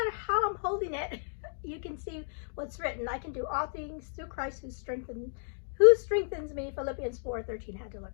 how I'm holding it, you can see what's written. I can do all things through Christ who strengthens me. Philippians 4:13. Had to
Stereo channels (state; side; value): silent; right; digital silence